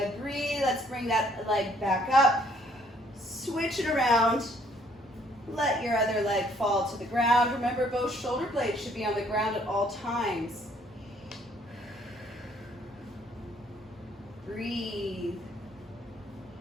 breathe. Let's bring that leg back up. Switch it around. Let your other leg fall to the ground. Remember, both shoulder blades should be on the ground at all times. Breathe.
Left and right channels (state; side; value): normal; both; correlation 0.64